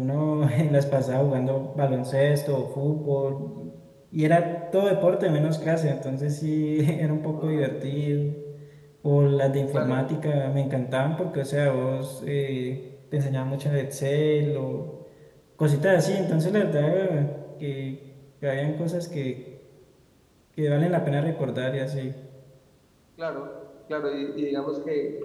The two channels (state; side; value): identical; both; correlation 1.00